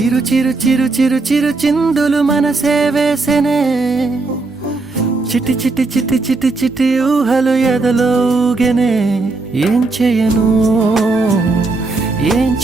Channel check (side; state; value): left; quieter; 3.6 dB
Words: చిరు చిరు చిరు చిరు చిందులు మనసే వేసెనే చిటి చిటి చిటి చిటి చిటి ఊహలు ఎదలో ఊగెనే ఏం చేయను ఏం